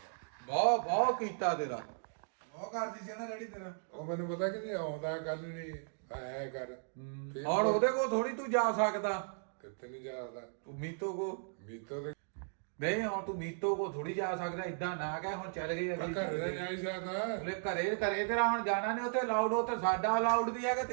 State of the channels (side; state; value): left; silent; digital silence